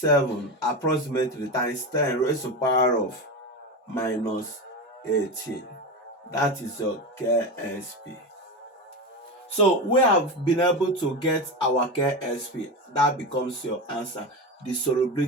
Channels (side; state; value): both; normal; correlation 0.20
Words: approximately times 10 raised to the power of minus 18. That is your KSP. So we have been able to get our KSP. That becomes your answer. The